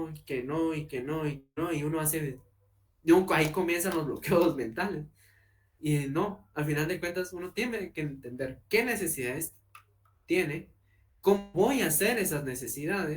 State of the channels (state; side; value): identical; both; correlation 1.00